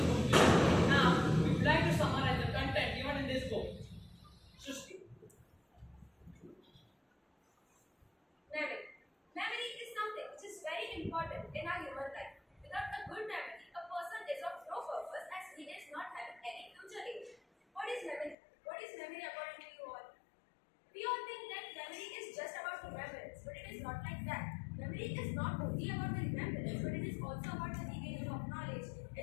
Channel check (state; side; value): drops out; right; at 18.4 s